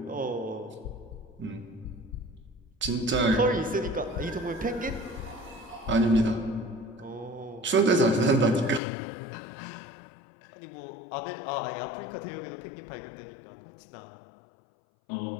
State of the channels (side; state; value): right; drops out; at 8.8 s